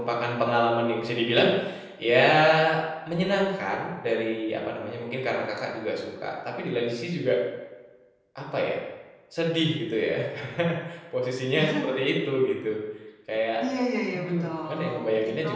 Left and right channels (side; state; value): both; identical; correlation 1.00